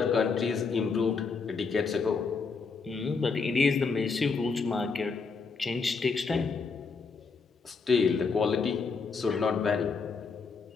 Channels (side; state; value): right; quieter; 4.9 dB